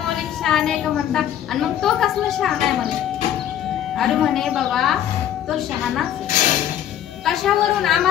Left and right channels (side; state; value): right; quieter; 10.7 dB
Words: शहाणे का म्हणता. आणि मग तो कसला शहाणा आहे म्हणे. अरे म्हणे बाबा तो शहाणाच. कशावरून?